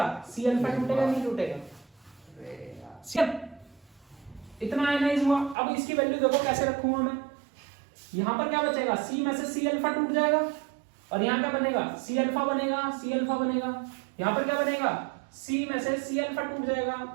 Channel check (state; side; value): drops out; left; at 5.6 s